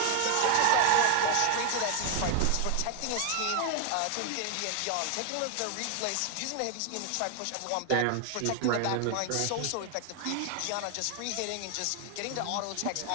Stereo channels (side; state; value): both; different; correlation 0.00